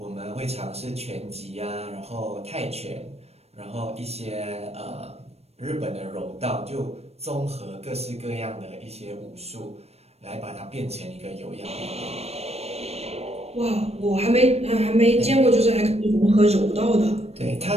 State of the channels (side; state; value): left; late; 0.30 ms